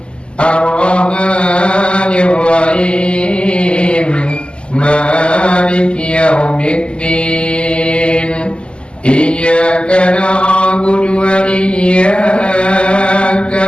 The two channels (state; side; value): late; right; 0.051 ms